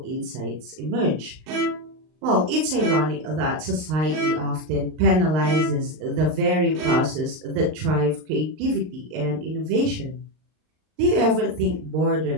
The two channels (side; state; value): left; late; 39 ms